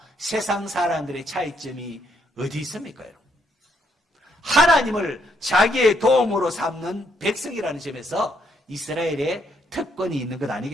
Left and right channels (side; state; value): both; normal; correlation 0.73